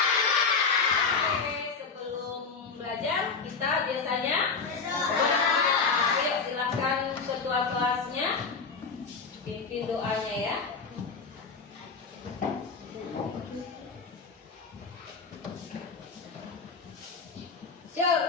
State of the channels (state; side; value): quieter; right; 4.9 dB